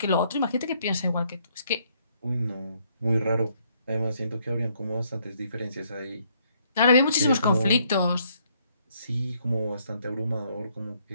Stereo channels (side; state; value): both; inverted; correlation -0.70